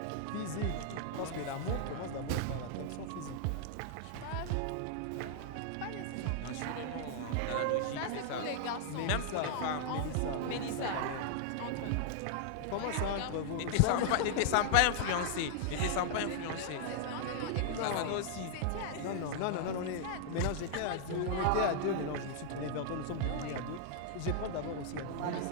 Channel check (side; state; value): both; different; correlation -0.01